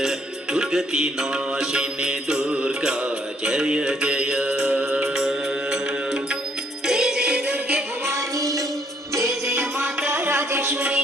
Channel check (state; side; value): normal; both; correlation 0.67